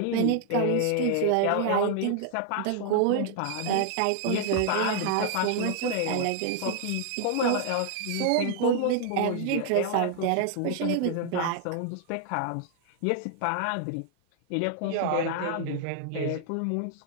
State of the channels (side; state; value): both; different; correlation 0.00